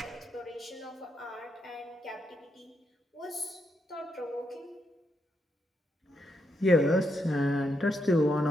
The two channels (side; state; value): both; normal; correlation 0.81